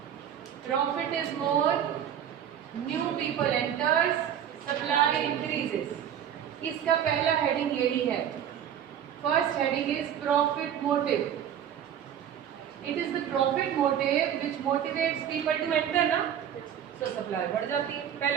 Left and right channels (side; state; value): left; quieter; 9.5 dB